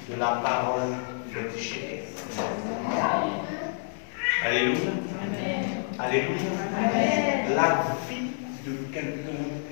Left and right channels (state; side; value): silent; right; 59 dB below the other